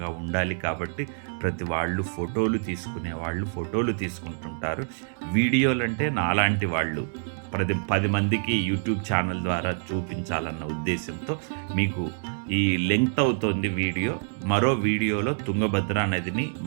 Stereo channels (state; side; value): silent; left; digital silence